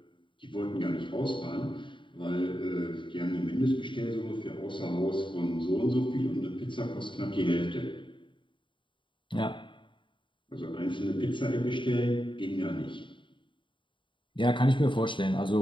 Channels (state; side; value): late; right; 0.24 ms